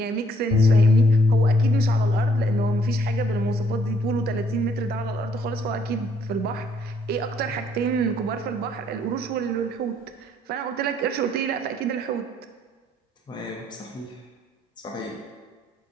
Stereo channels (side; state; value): both; normal; correlation 0.66